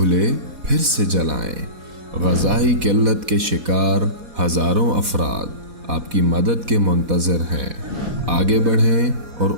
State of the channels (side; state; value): left; late; 4.1 ms